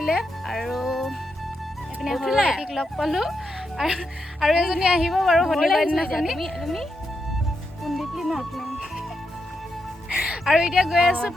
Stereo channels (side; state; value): both; normal; correlation 0.84